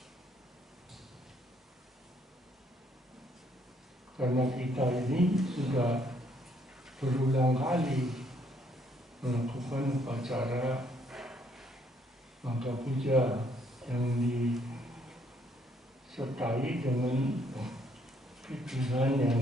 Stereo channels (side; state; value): both; normal; correlation 0.69